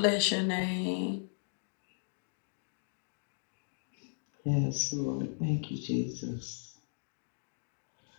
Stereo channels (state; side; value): silent; right; digital silence